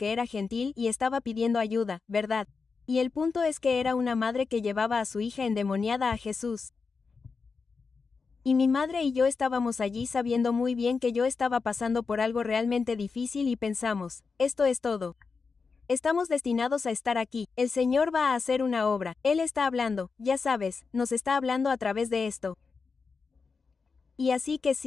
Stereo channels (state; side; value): quieter; right; 4.9 dB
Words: era gentil y estaba pidiendo ayuda, ¿verdad? Y el punto es que era una madre que llevaba a su hija endemoniada a Jesús. Y mi madre y yo estábamos allí sabiendo muy bien que yo estaba pasando por algo realmente difícil y pensamos, esto es todo. Estamos destinados a estar aquí, el Señor va a hacer una obra, Él está hablando, ya sabes, nos está hablando a través de esto. Y así que